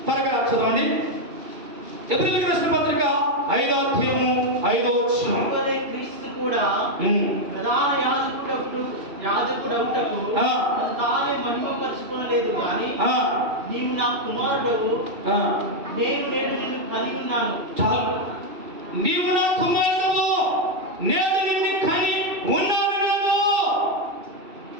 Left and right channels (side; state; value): left; late; 2.6 ms